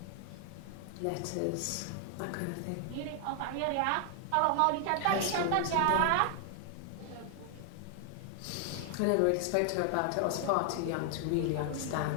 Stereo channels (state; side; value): different; both; correlation 0.00